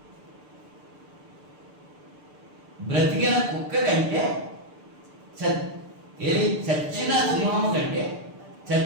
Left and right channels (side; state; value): left; late; 6.8 ms